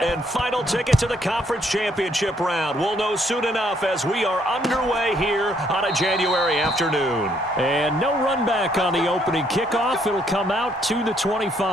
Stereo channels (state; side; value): normal; both; correlation 0.69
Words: and final ticket to the conference championship round? We'll know soon enough as we are underway here on a January afternoon. And no run back on the opening kickoff. It'll come out to the